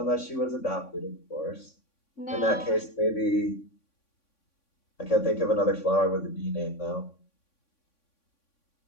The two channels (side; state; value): right; late; 3.6 ms